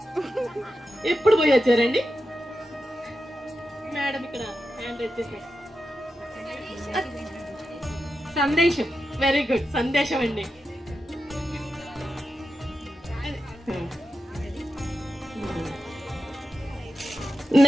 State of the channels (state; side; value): normal; both; correlation 0.89